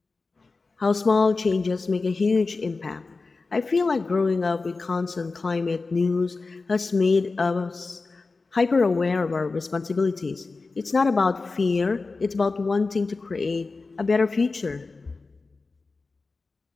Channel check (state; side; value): quieter; right; 3.9 dB